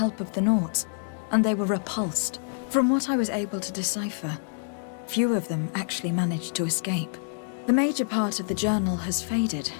of the Nords, and they were repulsed. From what I was able to decipher, few of them actually managed to escape. The major part of the journal has faded.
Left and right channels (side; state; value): right; silent; 60 dB below the other